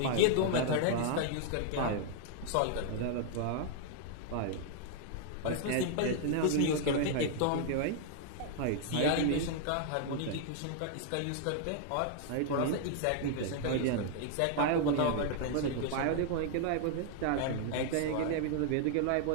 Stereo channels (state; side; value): different; both; correlation 0.00